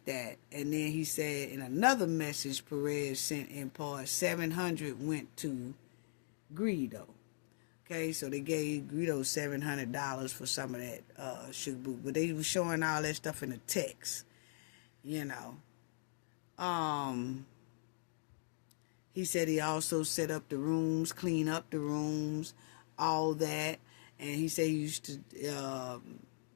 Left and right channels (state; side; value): silent; right; digital silence